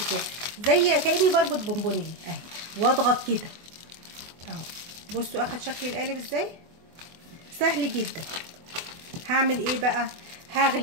كده زي كاني بربط بونبونيه اهي، واضغط كده اهو. بصوا اخد شكل القالب ازاي، سهل جدا. هعمل ايه بقى؟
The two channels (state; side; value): late; left; 24 ms